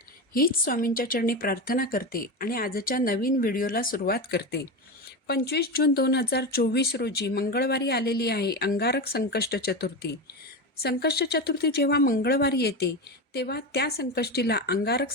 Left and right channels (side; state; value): both; normal; correlation 0.19